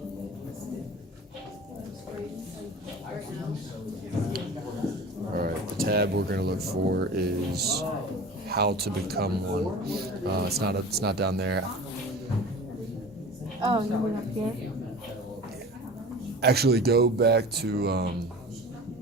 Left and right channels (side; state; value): both; normal; correlation 0.37